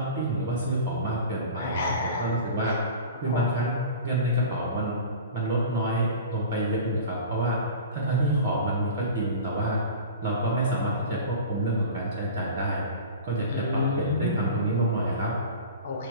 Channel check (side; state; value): both; inverted; correlation -0.35